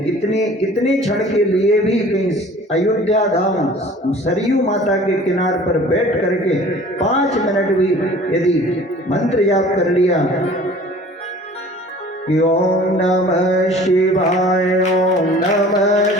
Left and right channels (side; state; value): both; normal; correlation 0.47